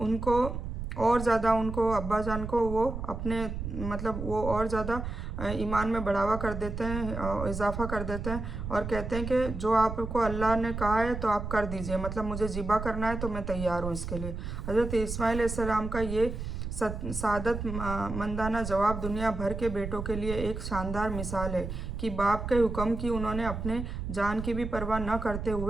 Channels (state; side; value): noise; right; rumble, 6 dB below the sound